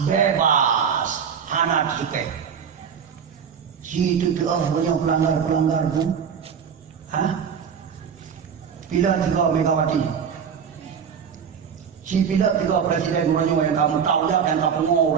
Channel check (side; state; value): left; quieter; 7.2 dB